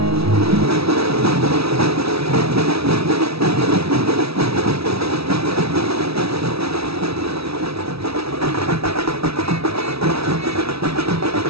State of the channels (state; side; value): late; left; 0.77 ms